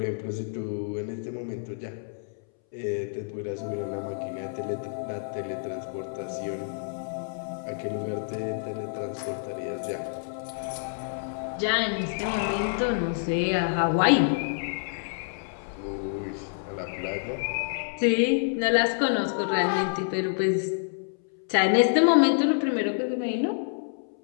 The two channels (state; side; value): silent; right; 59 dB below the other